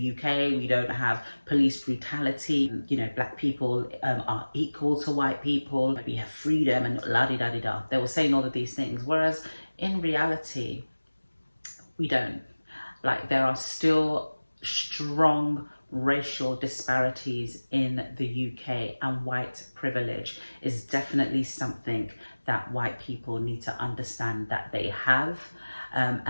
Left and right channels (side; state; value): both; inverted; correlation -1.00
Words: UK. We don't have police brutality. Black people are equal to white people. We have freedom and la-di-da-di-da. They were saying all of these things, whereas in reality, we don't. Like, there are still strong racial disparities in the UK, and white privilege is definitely something that white people need to understand that they have,